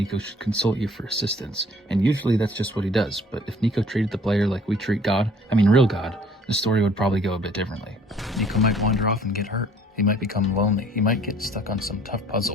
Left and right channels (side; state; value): both; normal; correlation 0.56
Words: should consult you for assistance, and usually that's just what he does. But if Niko treated the player like we treat God, real God, the story would probably go a bit differently. Niko might wander off and get hurt. He might become lonely. He might get stuck on some tough